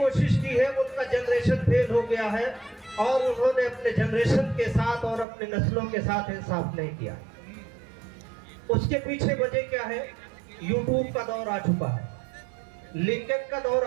की है, उनका जनरेशन फेल हो गया है और उन्होंने अपने जनरेशन के साथ और अपने नस्लों के साथ इंसाफ नहीं किया। उसके पीछे वजह क्या है? यूट्यूब का दौर आ चुका है, लिंक्डइन का दौर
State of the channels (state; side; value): drops out; left; at 5.2 s